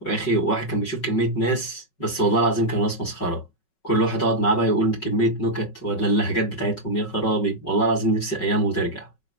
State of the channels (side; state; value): right; late; 5.4 ms